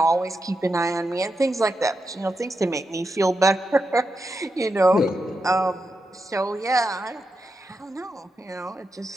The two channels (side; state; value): both; normal; correlation 0.87